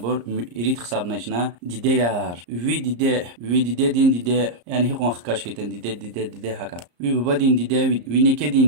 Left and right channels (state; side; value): late; left; 34 ms